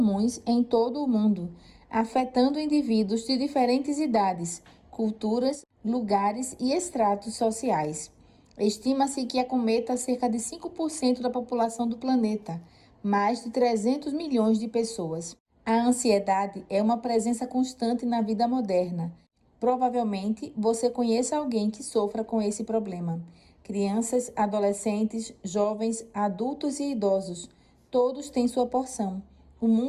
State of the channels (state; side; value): identical; both; correlation 1.00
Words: em todo o mundo, afetando indivíduos de diferentes idades, culturas, lugares e estratos sociais. Estima-se que acometa cerca de 5% da população do planeta, mais de 300 milhões de pessoas. A ansiedade é uma presença constante na vida moderna. Provavelmente você conheça alguém que sofra com esse problema. Crianças, adolescentes, jovens, adultos e idosos, todos têm sua porção. O